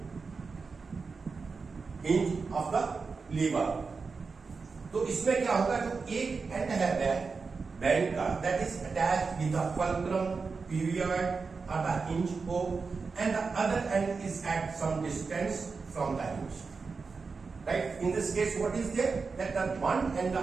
of the lever. तो इसमें क्या होगा, जो एक एंड है बैंड का, that is attached with the fulcrum, period or the hinge O, and the other end is at some distance from the hinge. Right? In this case, what is there? That the one end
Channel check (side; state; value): left; quieter; 4.7 dB